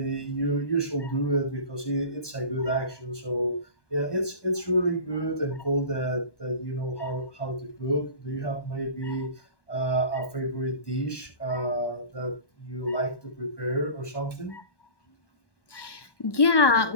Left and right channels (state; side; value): late; right; 1.1 ms